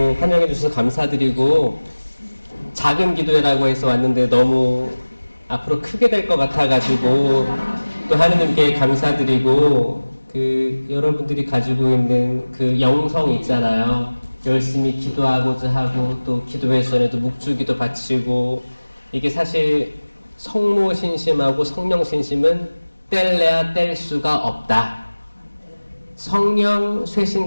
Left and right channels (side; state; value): both; inverted; correlation -1.00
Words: 환영해 주셔서 감사드리고, 작은 기도회라고 해서 왔는데 너무 앞으로 크게 될 것 같아가지고 또 하느님께 감사드리고, 여러분들이 가지고 있는 그 영성 있잖아요. 열심히 기도하고자 하고, 또 기도회선에도 묵주기도 바치고, 이게 사실 성모 신심하고 성령 신심은 뗄래야 뗄 수가 없다. 성령